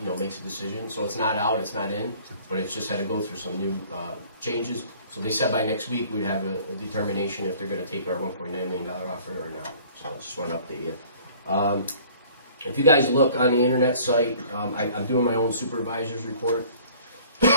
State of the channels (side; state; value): both; inverted; correlation -0.52